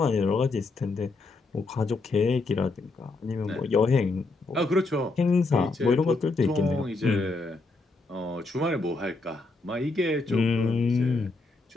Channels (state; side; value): quieter; right; 3.5 dB